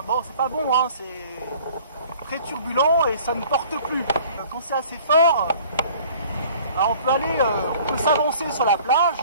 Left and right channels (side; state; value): both; inverted; correlation -0.51